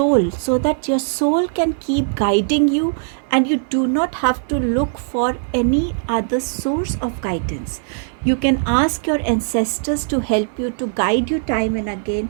so that your soul can keep guiding you and you do not have to look for any other source of guidance. You can ask your ancestors to help you, to guide you time and again.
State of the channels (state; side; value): silent; left; 60 dB below the other